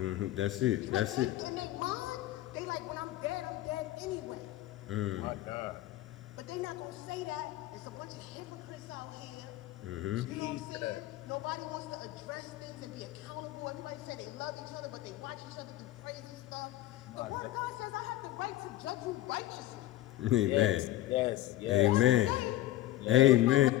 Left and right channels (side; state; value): right; quieter; 15.3 dB